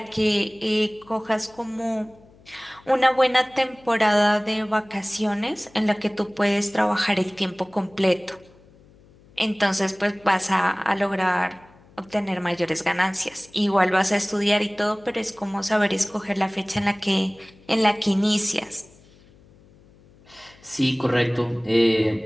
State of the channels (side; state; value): left; noise; hum, 27 dB below the sound